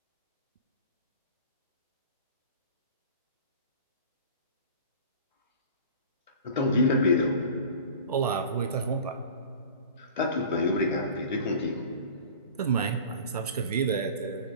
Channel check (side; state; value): both; inverted; correlation -0.40